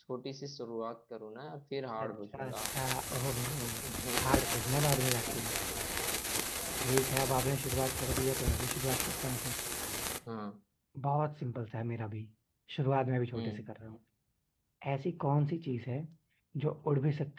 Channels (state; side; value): identical; both; correlation 1.00